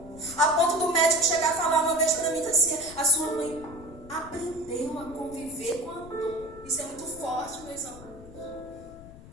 a ponto do médico chegar a falar uma vez para mim assim, a sua mãe aprendeu a conviver com a dor. Isso é muito forte, meus amados.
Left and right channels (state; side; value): noise; left; rumble, 18 dB below the sound